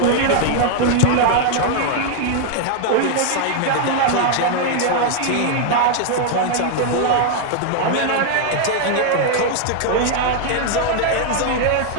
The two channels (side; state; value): both; different; correlation 0.00